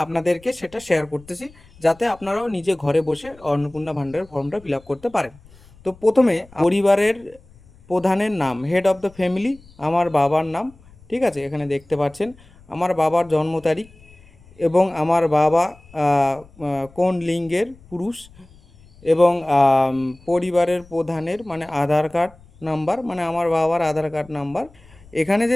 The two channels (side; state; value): left; noise; rumble, 26 dB below the sound